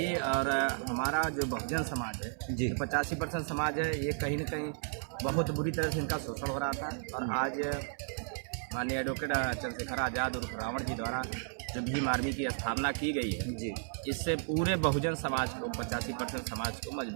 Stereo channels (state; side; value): silent; left; digital silence